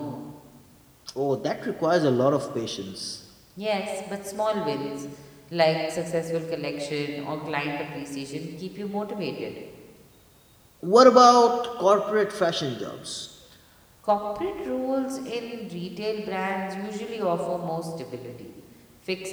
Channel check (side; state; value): both; identical; correlation 1.00